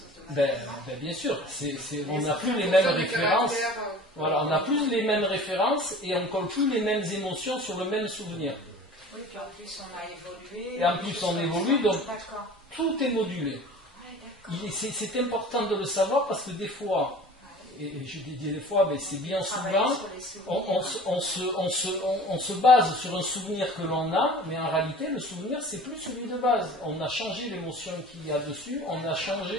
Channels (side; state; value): both; normal; correlation 0.42